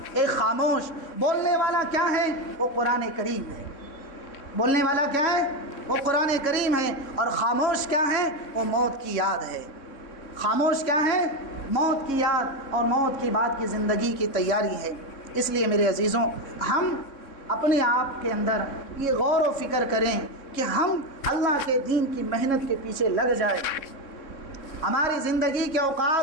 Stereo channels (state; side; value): late; right; 3.6 ms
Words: ایک خاموش۔ بولنے والا کیا ہے؟ وہ قرآن کریم ہے۔ بولنے والا کیا ہے؟ وہ قرآن کریم ہے۔ اور خاموش کیا ہے؟ وہ موت کی یاد ہے۔ خاموش کیا ہے؟ موت کی یاد اور موت کے بعد کی زندگی کی تیاری ہے۔ اس لیے میرے عزیزوں، ہم اپنے آپ کے اندر یہ غور و فکر کریں کہ ہم اللہ کے دین کی محنت کے پیچھے لگ جائیں، ہماری زندگی کے